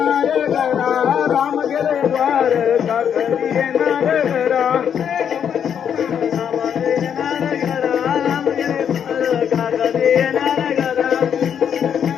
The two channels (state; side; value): quieter; right; 8.3 dB